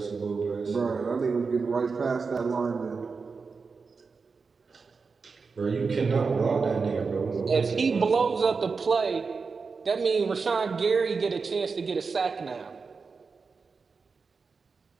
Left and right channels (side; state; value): left; quieter; 4.8 dB